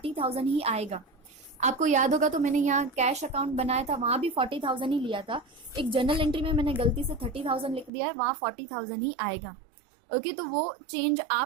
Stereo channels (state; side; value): drops out; left; at 7.9 s